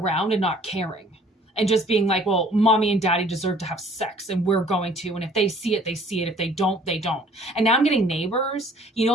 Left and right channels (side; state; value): both; normal; correlation 0.55